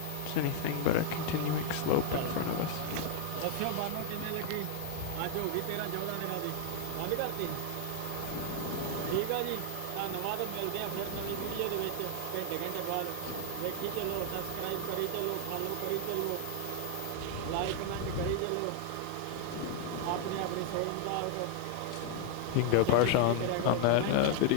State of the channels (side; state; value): both; different; correlation 0.00